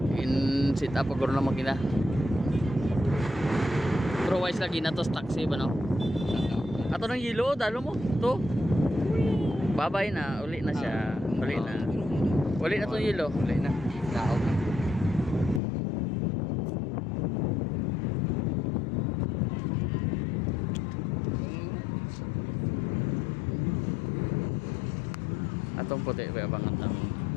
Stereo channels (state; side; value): drops out; right; at 15.6 s